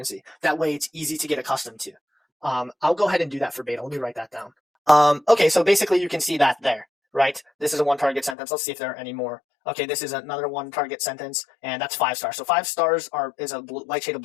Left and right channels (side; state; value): right; drops out; at 8.3 s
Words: That way it's easy to get accustomed to. I'll go ahead and do that for beta. Let me write that down. Okay, so basically you can see that there, right? This is a one target sentence. Let's see if there are any more. Okay, this is another one target sentence, and that's 5 stars. So 5 stars is a light shade of